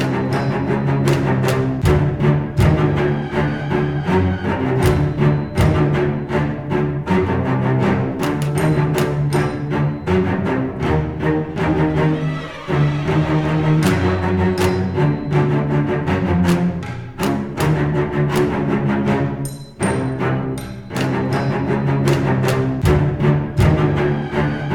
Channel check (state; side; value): identical; both; correlation 1.00